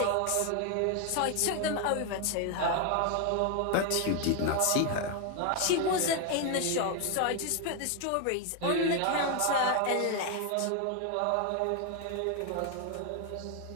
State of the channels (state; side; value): different; both; correlation 0.01